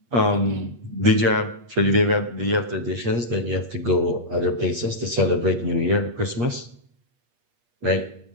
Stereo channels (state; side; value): late; left; 8.4 ms